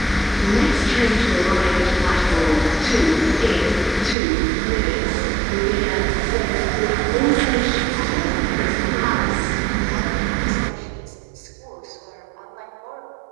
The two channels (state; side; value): drops out; left; at 4.2 s